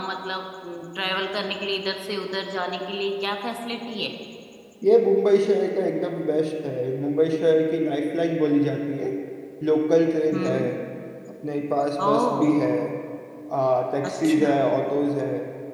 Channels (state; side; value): identical; both; correlation 1.00